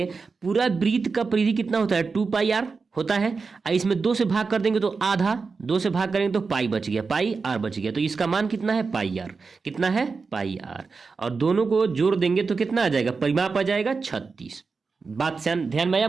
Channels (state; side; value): quieter; left; 4.6 dB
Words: पूरा वृत्त का परिधि कितना होता है? 2πr होता है। इसमें 2 से भाग कर देंगे तो आधा, 2 से भाग करेंगे तो पाई बच गया, पाई आर बच गया। तो इसका मान कितना है? पाई आर। कितना है? पाई आर। और दोनों को जोड़ देंगे तो कितना आ जाएगा? परिमाप आ जाएगा 36। बात ध्यान में